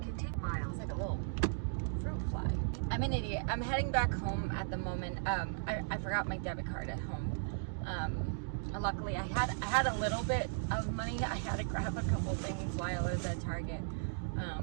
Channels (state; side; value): silent; left; digital silence